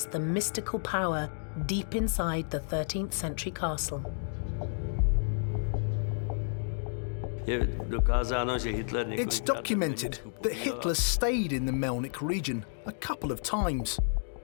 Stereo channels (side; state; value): right; silent; digital silence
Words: the mystical power deep inside the 13th century castle. It's documented that Hitler stayed in the Melnik region a couple of times.